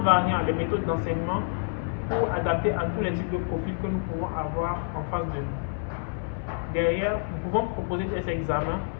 les méthodes d'enseignement pour adapter à tous les types de profils que nous pouvons avoir en face de nous. Derrière, nous pouvons proposer des examens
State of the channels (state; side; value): silent; right; 60 dB below the other